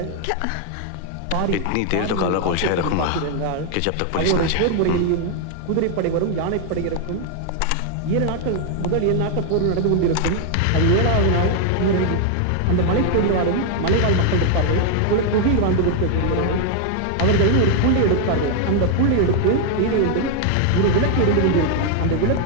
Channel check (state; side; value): different; both; correlation 0.00